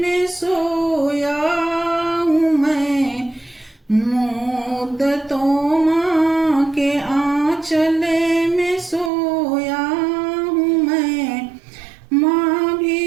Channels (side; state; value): left; drops out; at 9.1 s